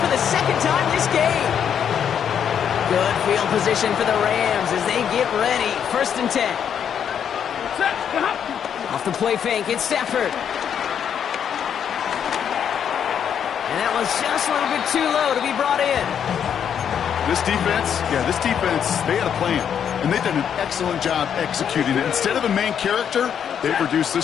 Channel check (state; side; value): quieter; right; 8.4 dB